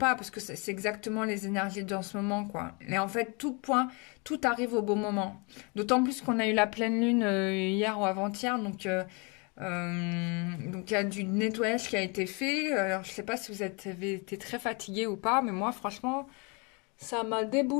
parce que c'est exactement les énergies de ce moment, quoi. Et en fait, tout arrive au bon moment. D'autant plus qu'on a eu la pleine lune hier ou avant-hier, donc il y a du nettoyage qui a été fait. Alors je sais pas si vous avez été très fatigué ou pas, mais moi franchement, ça m'a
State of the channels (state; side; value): quieter; right; 31.8 dB